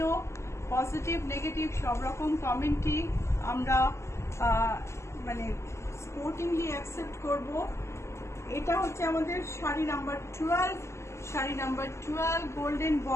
পজিটিভ নেগেটিভ সব রকম কমেন্টই আমরা মানে স্পোর্টিংলি অ্যাকসেপ্ট করব। এটা হচ্ছে আমাদের sari number 12, sari number 12, golden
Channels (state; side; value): late; right; 0.13 ms